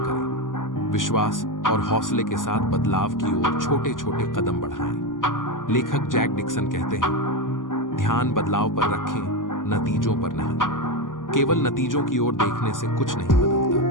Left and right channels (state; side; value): late; right; 0.88 ms